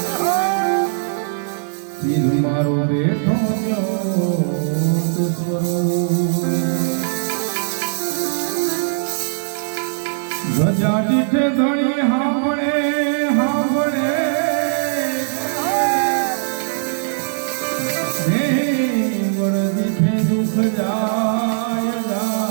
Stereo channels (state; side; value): silent; left; digital silence